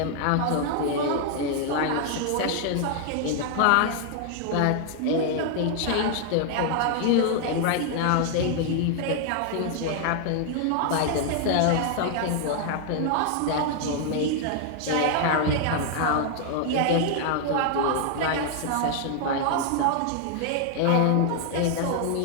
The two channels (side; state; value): both; different; correlation 0.00